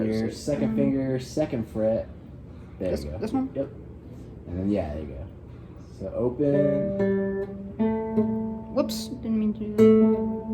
is your it? second finger, second fret. There you go. This one? Yep. And then, there you go. So open. Whoops, didn't mean to do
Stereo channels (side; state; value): both; identical; correlation 1.00